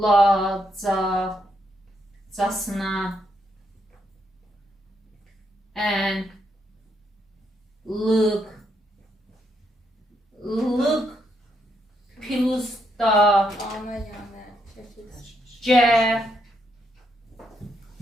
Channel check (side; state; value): both; normal; correlation 0.78